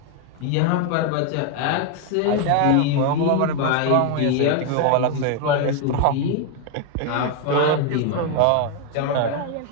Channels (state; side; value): different; both; correlation 0.01